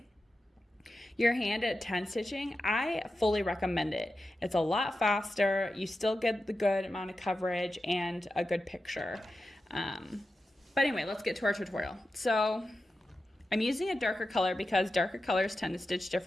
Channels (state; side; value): normal; both; correlation 0.91